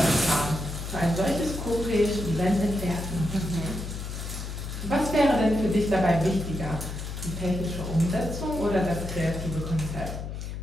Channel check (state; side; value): noise; left; hum, 6 dB below the sound